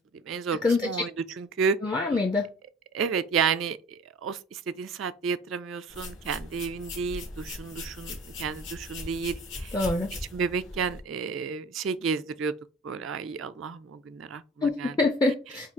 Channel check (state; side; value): normal; both; correlation 0.45